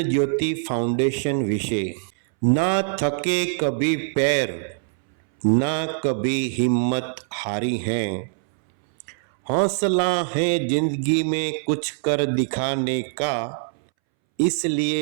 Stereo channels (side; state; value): left; silent; 63 dB below the other